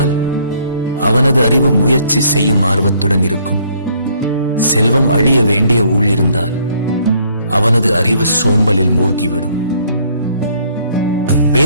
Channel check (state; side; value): inverted; both; correlation -0.64